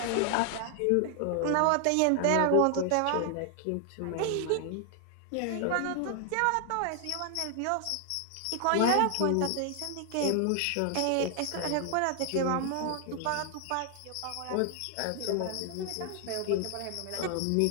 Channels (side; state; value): both; different; correlation 0.00